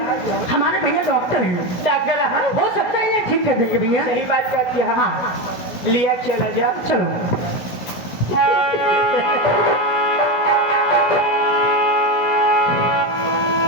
हमारे भैया डॉक्टर हैं, डॉक्टर हो सकता है इन्हें ठीक कर देंगे भैया। सही बात करती है हाँ लिया चला जा चलो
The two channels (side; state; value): right; late; 17 ms